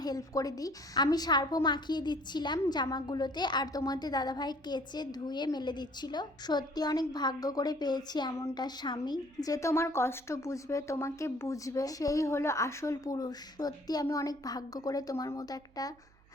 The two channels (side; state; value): right; noise; hum, 29 dB below the sound